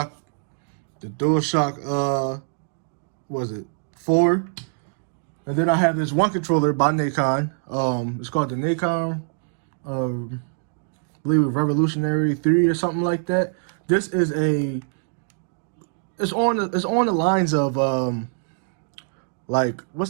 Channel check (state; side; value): silent; left; digital silence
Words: was it 4? And then I have this one controller by Nacon. It's called the Nacon, I believe Revolutionary 3 or something like that. This is it's on the lines of like what's